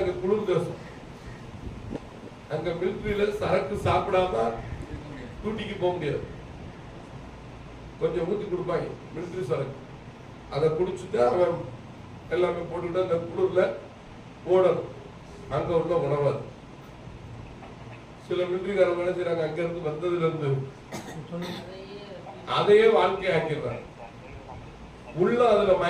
குளிர் தேசம், அங்க மிலிட்டரியில சரக்கு சாப்பிடாம டூட்டிக்கு போக முடியாது. கொஞ்சம் ஊத்தி கொடுப்பாங்க மிலிட்டரி சரக்கு, அதை குடிச்சுட்டு அவன் எல்லாமே போட்டுக்கிட்டு அந்த குளிர்ல ஓடணும். அங்க உள்ள உணவாது. சில மிலிட்டரிக்காரங்க என்ன செய்யறாங்க, அங்க இருந்து வந்ததுல இருந்து அதையே வாழ்க்கையை ஆக்கிடுறாங்க. உள்ள அதுல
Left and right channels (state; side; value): identical; both; correlation 1.00